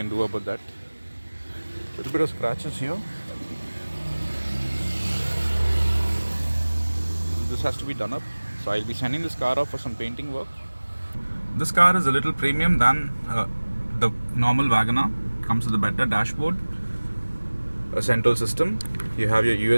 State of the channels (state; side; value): inverted; both; correlation -1.00